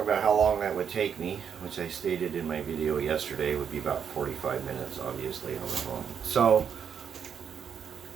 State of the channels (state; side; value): quieter; left; 7.6 dB